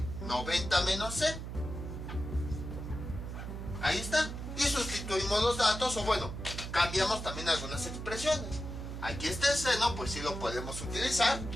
90 menos C. Ahí está. Y sustituimos los datos, o bueno, cambiamos también algunas expresiones. Aquí está el seno, pues sí lo podemos utilizar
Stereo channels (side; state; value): right; noise; hum, 7 dB below the sound